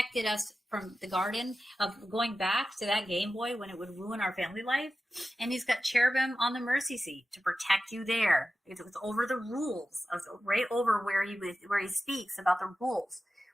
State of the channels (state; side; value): normal; both; correlation 0.94